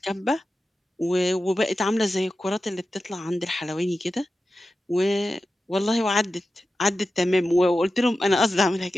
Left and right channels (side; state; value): both; normal; correlation 0.92